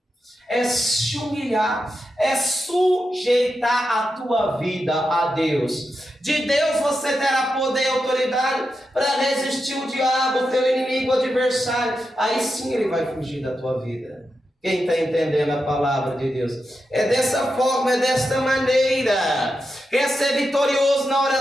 É se humilhar, é sujeitar a tua vida a Deus. De Deus você terá poder e autoridade para resistir o diabo, o teu inimigo, o adversário. Aí sim ele vai fugir da tua vida. Quem está entendendo a palavra de Deus? É dessa forma, é desta maneira. Quer ser vitorioso na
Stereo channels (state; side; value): normal; both; correlation 0.88